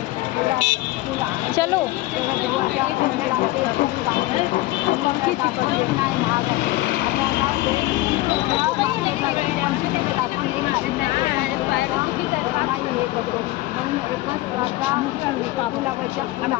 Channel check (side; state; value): right; quieter; 18.2 dB